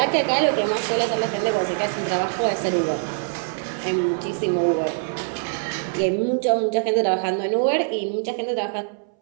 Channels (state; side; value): silent; left; 62 dB below the other